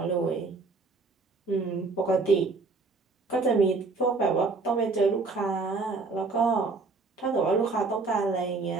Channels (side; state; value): left; quieter; 3.9 dB